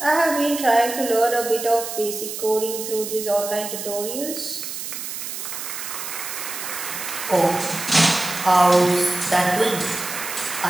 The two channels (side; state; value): right; noise; hiss, 7 dB below the sound